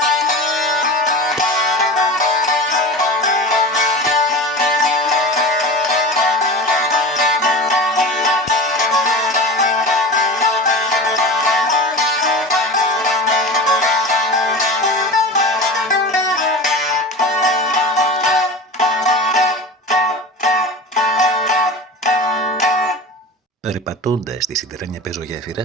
Περπατώντας τη σιδερένια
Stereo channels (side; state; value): both; normal; correlation 0.31